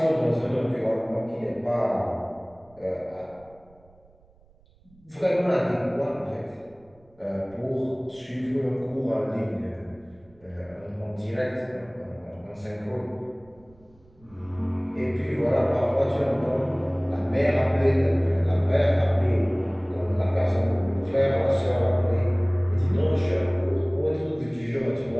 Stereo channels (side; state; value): right; noise; rumble, 29 dB below the sound